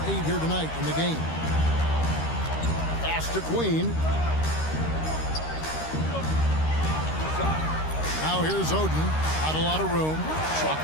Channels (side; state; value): right; late; 13 ms